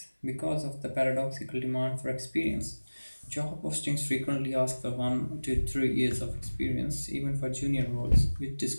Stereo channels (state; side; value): inverted; both; correlation -1.00